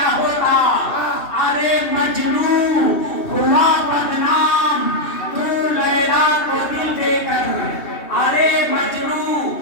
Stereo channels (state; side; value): late; right; 2.8 ms